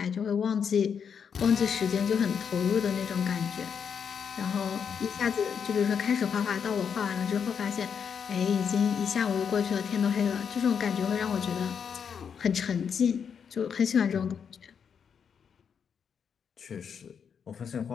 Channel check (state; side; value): quieter; right; 7.1 dB